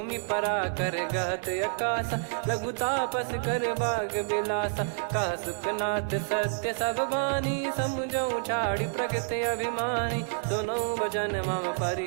परा कर गहत आकाशा, लघु तापस कर बाग बिलासा। कह सुखनाथ सत्य सब बानी, समुझौ छाड़ी प्रकृति अभिमानी। सुनो भजन मम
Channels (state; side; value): silent; left; digital silence